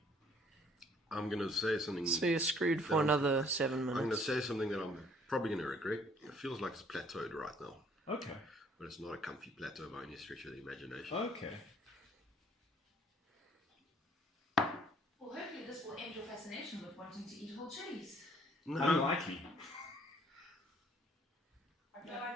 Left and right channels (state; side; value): normal; both; correlation 0.61